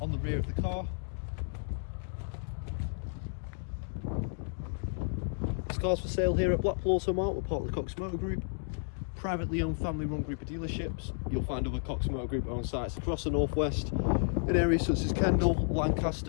on the rear of the car. This car's for sale here at Blackpool Automart. We're part of the Cox Motor Group, privately owned, family run group of dealerships. You'll find other Cox Motor Group owned sites across the northwest in areas such as Kendal,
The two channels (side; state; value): right; silent; digital silence